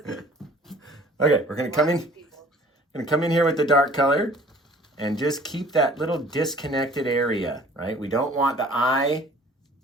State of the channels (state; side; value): normal; both; correlation 0.51